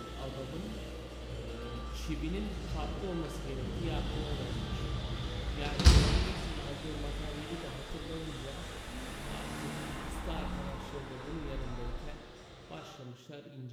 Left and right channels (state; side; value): identical; both; correlation 1.00